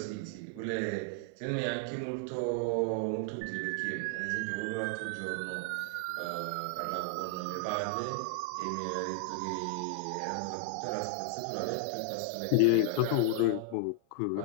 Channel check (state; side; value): different; both; correlation 0.00